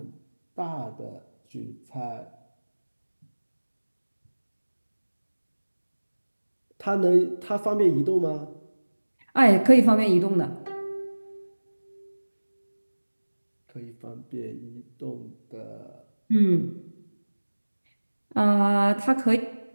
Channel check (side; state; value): both; inverted; correlation -1.00